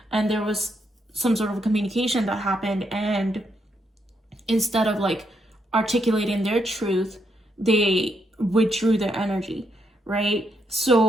And there was some sort of a communication that happened, and instead of like articulating their truth, they withdrew their energy, right?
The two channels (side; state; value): both; normal; correlation 0.78